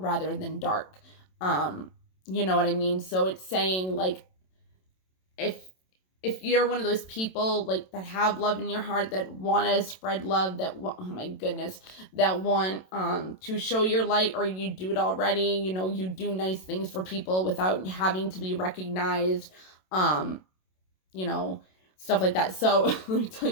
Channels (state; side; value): late; right; 27 ms